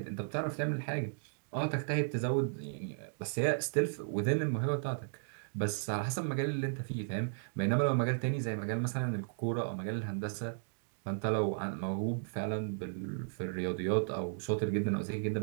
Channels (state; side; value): silent; left; digital silence